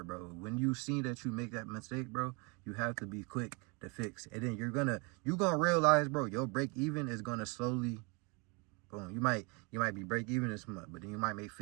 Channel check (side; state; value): left; quieter; 30.7 dB